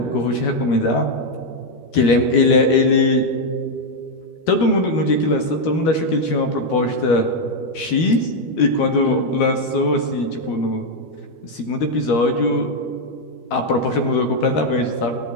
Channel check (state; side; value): late; right; 12 ms